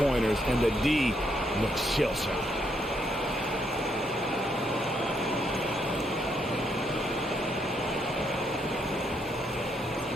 and the D looks shell-shocked.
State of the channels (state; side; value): normal; both; correlation 0.75